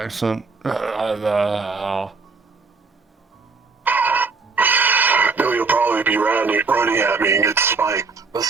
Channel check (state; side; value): quieter; left; 4.4 dB